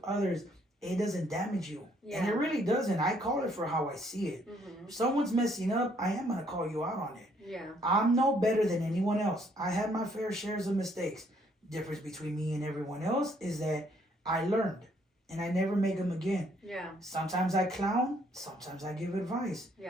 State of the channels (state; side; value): normal; both; correlation 0.67